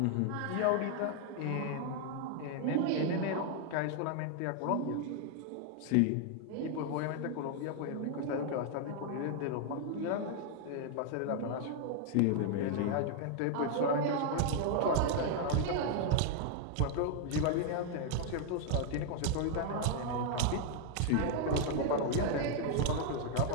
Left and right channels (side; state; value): both; different; correlation 0.00